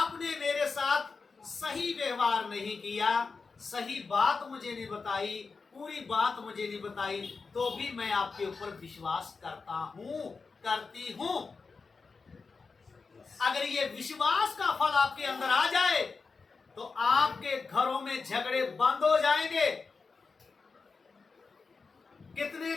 मेरे साथ सही व्यवहार नहीं किया, सही बात मुझे नहीं बताई, पूरी बात मुझे नहीं बताई, तो भी मैं आपके ऊपर विश्वास करता हूं, करती हूं। अगर ये विश्वास का फल आपके अंदर आ जाए तो आपके घरों में झगड़े बंद हो जाएंगे। कितने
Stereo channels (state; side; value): quieter; right; 4.6 dB